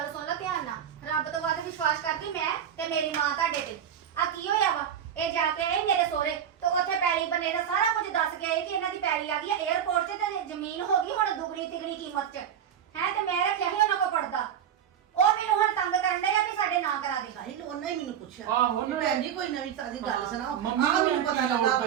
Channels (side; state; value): left; quieter; 9.2 dB